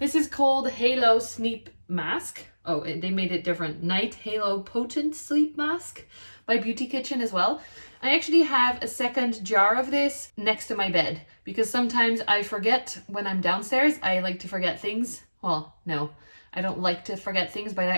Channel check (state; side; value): inverted; both; correlation -1.00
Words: This is called Halo Sleep Mask. Oh, they made it different. Night Halo Potent Sleep Mask by Beauty Kitchen as well. I actually have a second jar of this next to my bed because sometimes I forget when I'm downstairs. I like to forget things. Well, no, I don't like to forget things, but I